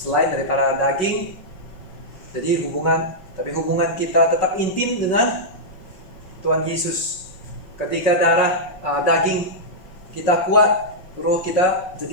daripada daging. Jadi hubungan kita tetap intim dengan Tuhan Yesus. Ketika daging kita kuat, roh kita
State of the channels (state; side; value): late; right; 5.5 ms